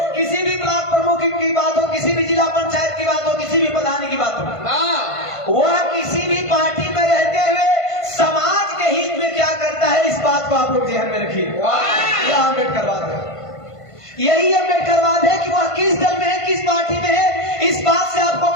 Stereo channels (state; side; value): late; right; 1.5 ms